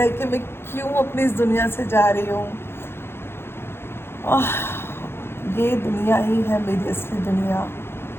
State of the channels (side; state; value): right; late; 0.11 ms